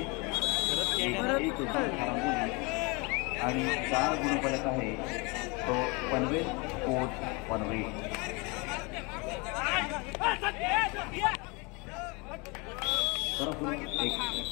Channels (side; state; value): right; quieter; 28.5 dB